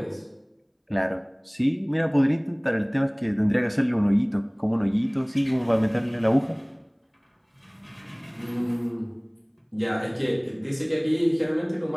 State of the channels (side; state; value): both; identical; correlation 1.00